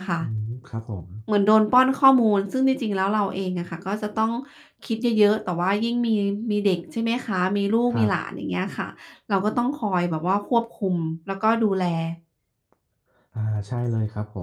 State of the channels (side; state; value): both; identical; correlation 1.00